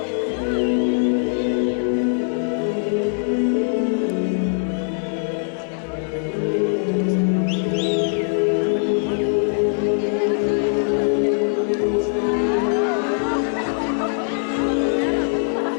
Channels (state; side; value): silent; right; 65 dB below the other